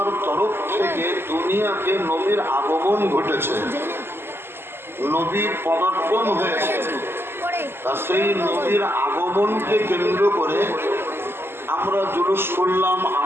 তরফ থেকে দুনিয়াকে নবীর আগমন ঘটেছে, নবীর পদার্পণ হয়েছে। তা সেই নবীর আগমনকে কেন্দ্র করে আমরা জুলুস করলাম,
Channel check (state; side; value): late; left; 0.11 ms